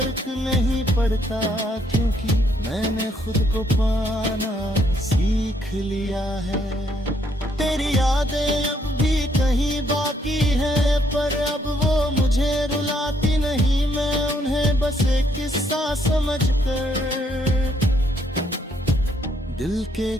नहीं पड़ता, क्योंकि मैंने खुद को पाना सीख लिया है। तेरी यादें अब भी कहीं बाकी है, पर अब वो मुझे रुलाती नहीं। मैं उन्हें बस एक किस्सा समझकर दिल के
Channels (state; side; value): normal; both; correlation 0.71